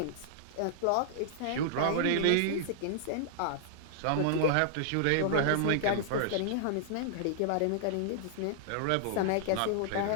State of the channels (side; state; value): both; different; correlation -0.01